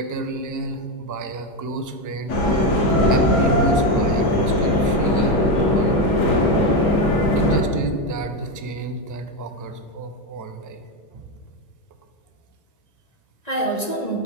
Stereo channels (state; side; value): late; right; 1.9 ms